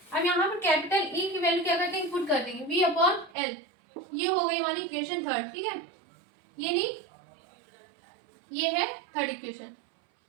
अब यहाँ पर कैपिटल ई की वैल्यू क्या कर देंगे? पुट कर देंगे V अपॉन एल, ये हो गई हमारी इक्वेशन थर्ड, ठीक है। ये नहीं, ये है थर्ड इक्वेशन,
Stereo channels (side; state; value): left; drops out; at 3.4 s